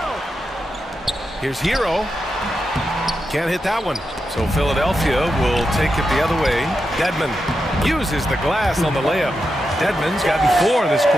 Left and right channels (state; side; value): normal; both; correlation 0.87